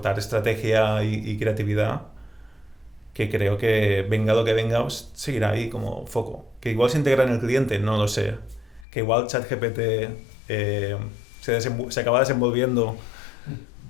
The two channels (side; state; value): right; drops out; at 8.8 s